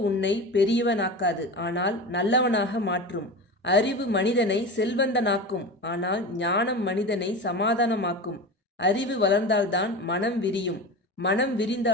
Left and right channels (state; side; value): normal; both; correlation 0.28